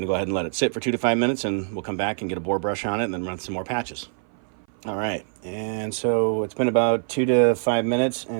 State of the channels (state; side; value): silent; left; 58 dB below the other